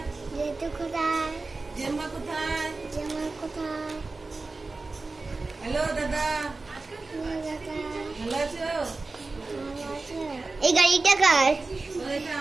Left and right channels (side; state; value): left; quieter; 3.6 dB